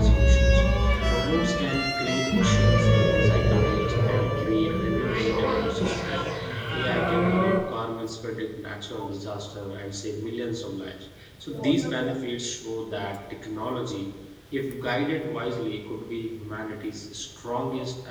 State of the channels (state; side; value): identical; both; correlation 1.00